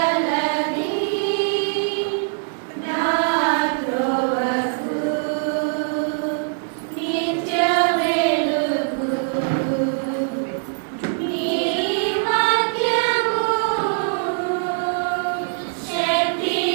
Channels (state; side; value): silent; left; digital silence